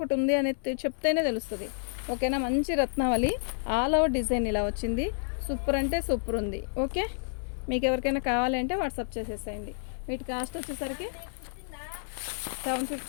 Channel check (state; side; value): silent; right; 58 dB below the other